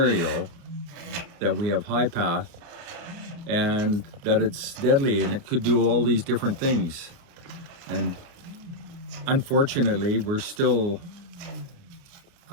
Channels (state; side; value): late; left; 29 ms